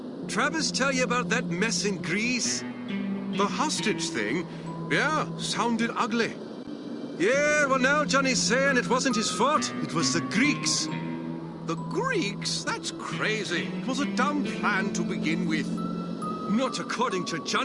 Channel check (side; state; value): both; identical; correlation 1.00